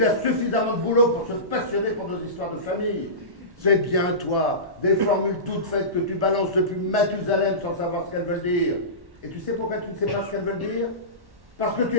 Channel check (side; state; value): left; late; 1.1 ms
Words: a suffisamment de boulot pour se passionner pour nos histoires de famille. C'est bien toi, des formules toutes faites que tu balances depuis Mathusalem sans savoir ce qu'elles veulent dire. Et tu sais pourquoi tu ne sais pas ce qu'elles veulent dire? Parce que tu